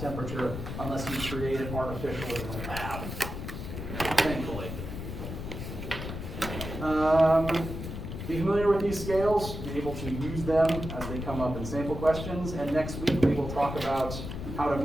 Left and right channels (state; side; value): noise; left; rumble, 7 dB below the sound